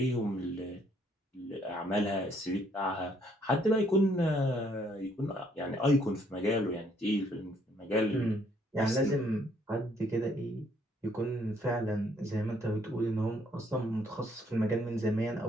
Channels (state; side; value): normal; both; correlation 0.67